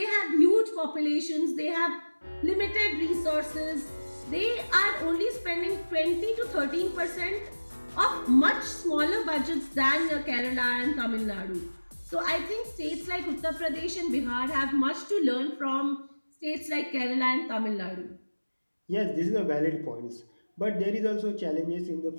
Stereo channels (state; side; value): inverted; both; correlation -1.00